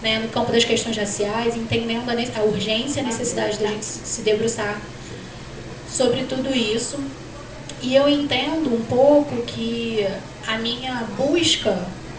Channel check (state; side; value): identical; both; correlation 1.00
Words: no campo das questões raciais, entendendo a urgência e a necessidade da gente se debruçar sobre tudo isso. E eu entendo um pouco que a minha busca